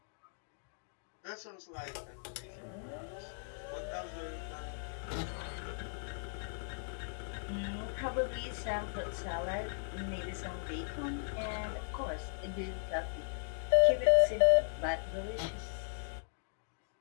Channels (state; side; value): silent; right; digital silence